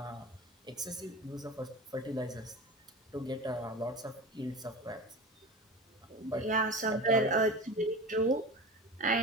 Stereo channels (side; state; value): both; normal; correlation 0.30